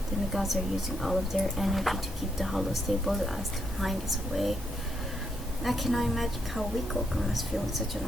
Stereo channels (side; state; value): both; normal; correlation 0.78